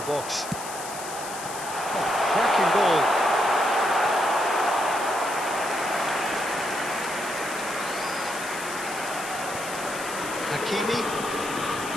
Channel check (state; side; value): noise; left; hiss, 10 dB below the sound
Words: box. Oh, cracking ball. Hakimi.